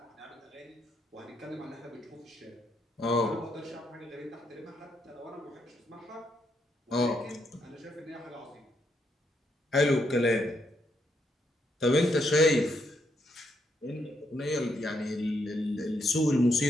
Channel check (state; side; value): normal; both; correlation 0.77